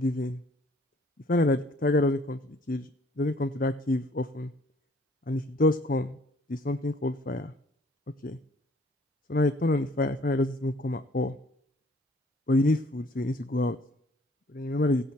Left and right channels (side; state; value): both; normal; correlation 0.59